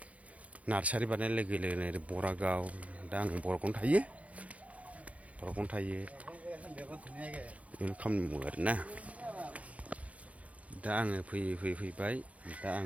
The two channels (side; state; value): left; late; 0.067 ms